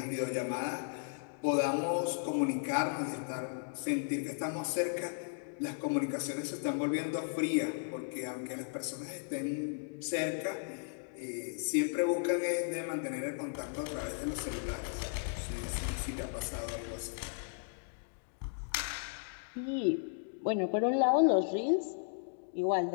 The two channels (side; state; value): right; silent; digital silence